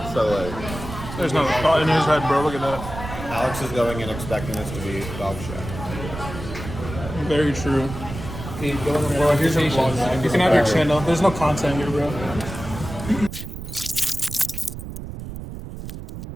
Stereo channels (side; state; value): right; noise; rumble, 9 dB below the sound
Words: So like, There's no thought in his head, bro. Look at that. Alex is going in expecting this to be dog shit. Very true. Bro, here's your vlog. You can have your channel. There's no content here, bro.